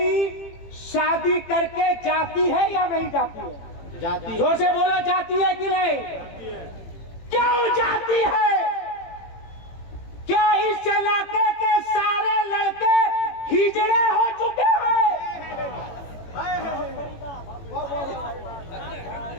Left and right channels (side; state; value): right; late; 18 ms